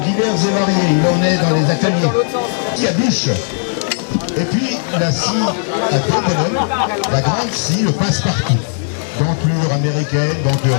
divers et variés. Il en est dans les ateliers. Il y a bûche. Et puis, la scie à deux bonhommes, la grande scie, le passe-partout. Denture américaine, denture...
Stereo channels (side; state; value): right; silent; 69 dB below the other